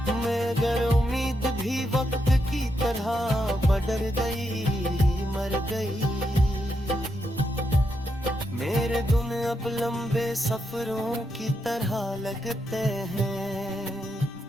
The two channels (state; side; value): normal; both; correlation 0.82